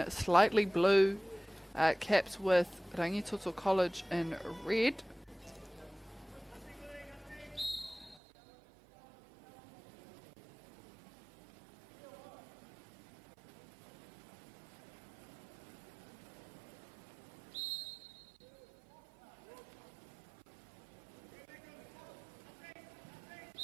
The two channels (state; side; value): drops out; left; at 8.2 s